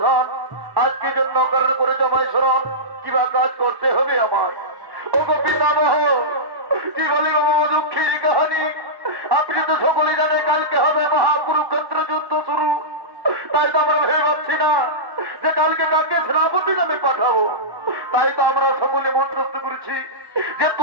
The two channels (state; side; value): late; left; 1.1 ms